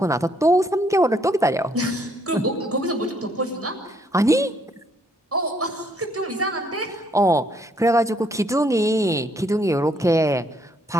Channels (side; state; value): both; normal; correlation 0.69